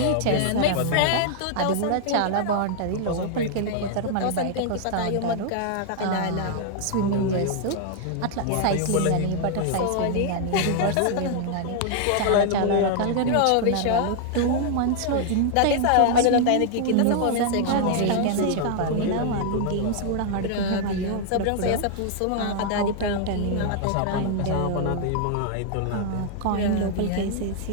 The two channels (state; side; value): different; both; correlation 0.00